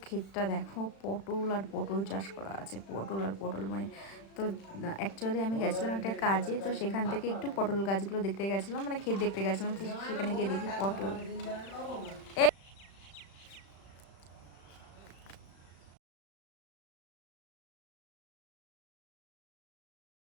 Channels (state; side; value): late; right; 36 ms